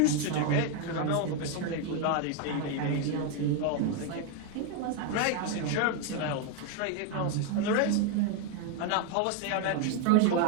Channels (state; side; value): different; both; correlation 0.01